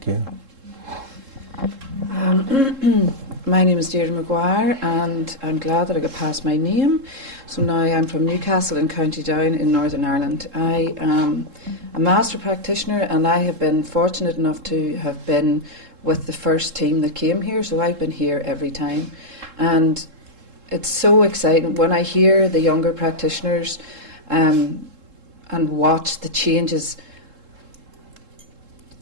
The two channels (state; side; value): late; left; 3.7 ms